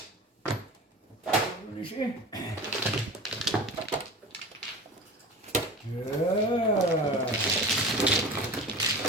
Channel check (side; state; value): both; normal; correlation 0.35